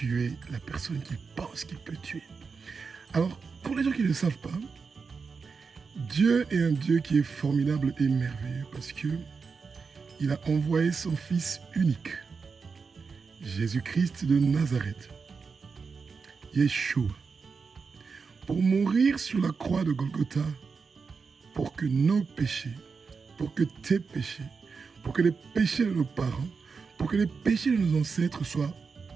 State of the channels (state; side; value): quieter; left; 5.1 dB